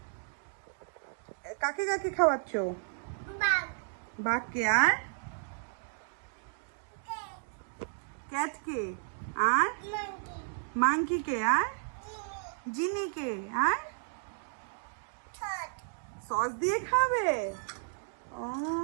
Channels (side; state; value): left; silent; digital silence